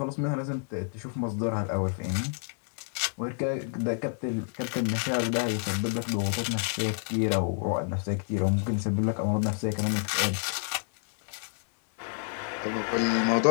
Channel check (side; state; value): right; silent; 58 dB below the other